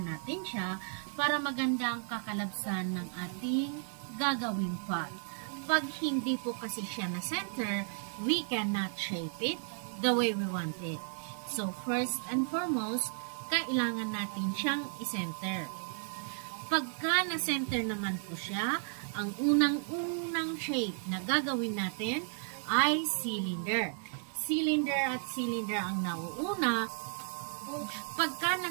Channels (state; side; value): silent; left; 55 dB below the other